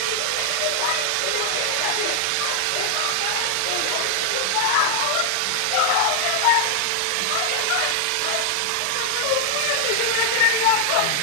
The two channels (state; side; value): different; both; correlation 0.00